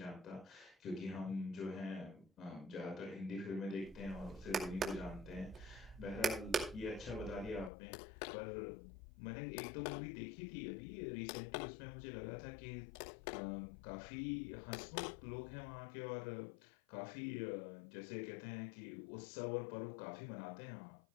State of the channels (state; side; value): drops out; right; at 7.7 s